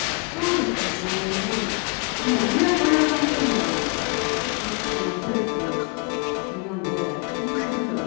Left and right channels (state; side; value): quieter; right; 33.9 dB